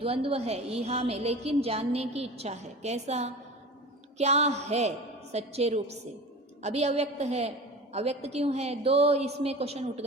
है यहाँ में, लेकिन जानने की इच्छा है। कैसा? क्या है सच्चे रूप से? अभी अव्यक्त है। अव्यक्त क्यों है? दो इसमें क्वेश्चन उठ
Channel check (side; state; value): both; normal; correlation 0.34